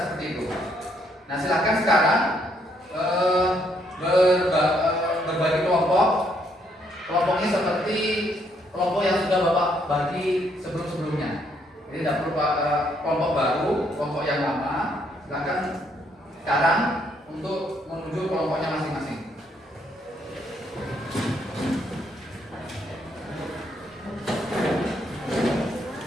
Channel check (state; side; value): normal; both; correlation 0.71